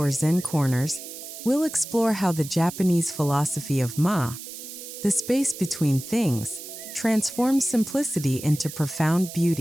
zen corners, we'll explore how the Japanese philosophy of the space between things, transforms simplicity into profound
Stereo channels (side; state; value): right; noise; hiss, 12 dB below the sound